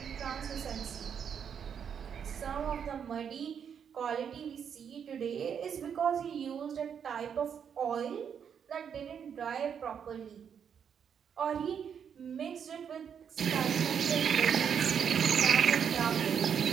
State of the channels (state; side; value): quieter; left; 7.7 dB